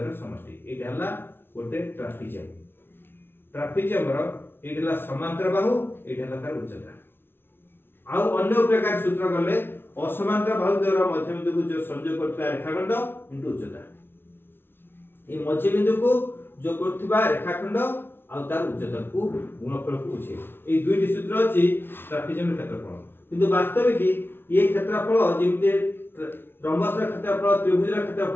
समष्टि एटा हला गोटे ट्राफिजम रो एटा समांतर बाहु एटा हला तार उच्चता आ अन्य प्रकार सूत्र गले असमांतर बाहुद्वयर मध्य बिंदु को जो संयोग करथला रेखाखंड इनटू उच्चता ए मध्य बिंदु को जो करथबा रेखाखंड आ तार उच्चता को गुणफल को उछे ए दुईटी सूत्र अछि ट्राफिजम क्षेत्रफल किंतु वास्तविक कि ये क्षेत्रफल जेमते रंबस क्षेत्रफल त्रिभुज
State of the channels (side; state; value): right; late; 0.11 ms